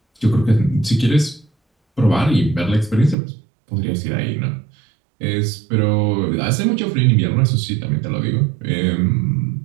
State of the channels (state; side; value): drops out; left; at 3.2 s